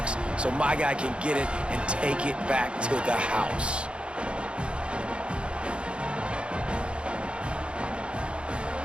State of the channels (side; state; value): left; late; 0.057 ms